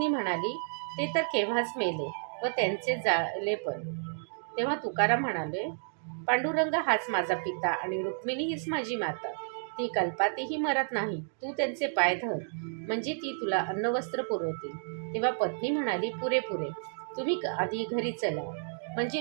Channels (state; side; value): silent; left; digital silence